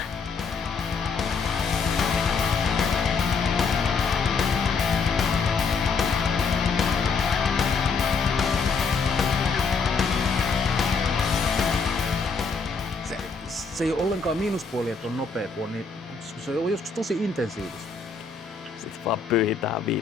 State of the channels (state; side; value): quieter; right; 5.0 dB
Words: Se ei ole ollenkaan miinuspuoli, että on nopea, kun on niin, se on joskus tosi intensiivistä. Sitten vaan pyyhitään